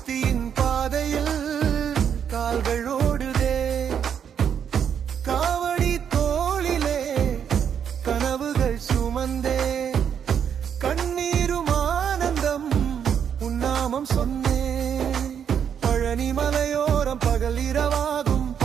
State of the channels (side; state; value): left; quieter; 8.1 dB